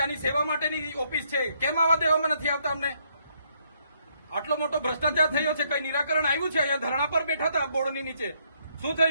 સેવા માટેની ઓફિસ છે. કેમ આવા દેવામાં નથી આવતા અમને? આટલો મોટો ભ્રષ્ટાચાર થયો છે, કઈ નિરાકરણ આવ્યું છે? અહીંયા ધરણા પર બેઠા હતા બોર્ડની નીચે, શું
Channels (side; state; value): both; inverted; correlation -0.71